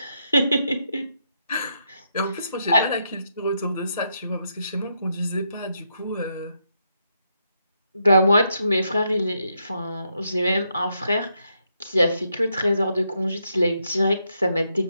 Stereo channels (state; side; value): inverted; both; correlation -0.79